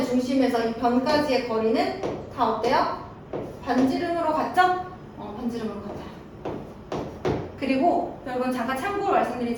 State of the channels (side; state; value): both; identical; correlation 1.00